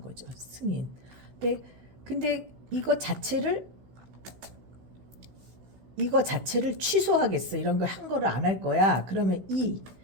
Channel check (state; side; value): late; left; 16 ms